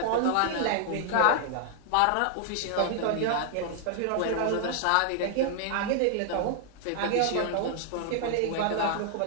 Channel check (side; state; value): both; different; correlation -0.01